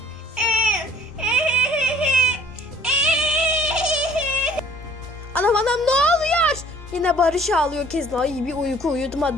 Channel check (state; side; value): normal; both; correlation 0.55